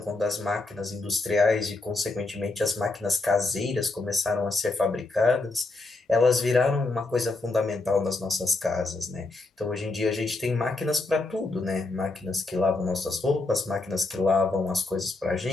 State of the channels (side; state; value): right; quieter; 3.2 dB